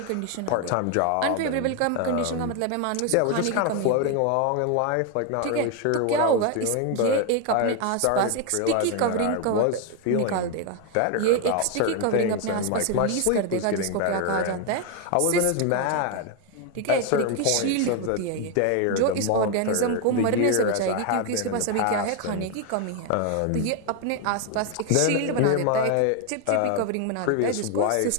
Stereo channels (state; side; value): different; both; correlation 0.01